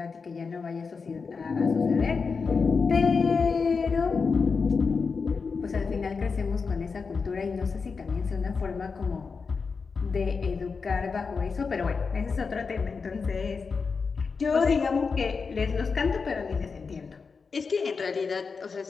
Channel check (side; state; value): right; quieter; 5.0 dB